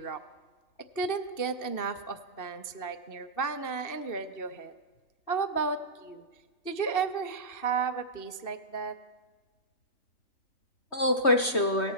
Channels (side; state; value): right; late; 3.2 ms